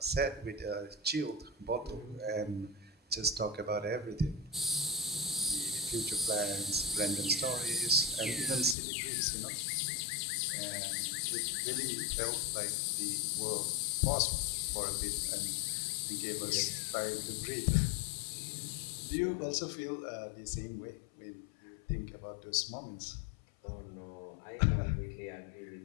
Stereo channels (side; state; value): right; drops out; at 8.8 s